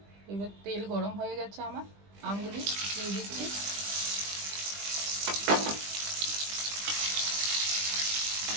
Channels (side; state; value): left; late; 20 ms